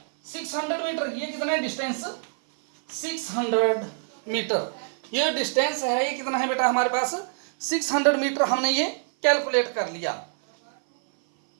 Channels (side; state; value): left; silent; 59 dB below the other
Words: 600 मीटर। ये कितना है डिस्टेंस? 600 मीटर। ये डिस्टेंस है ये कितना है बेटा हमारे पास? 600 मीटर हमने ये कैलकुलेट कर लिया।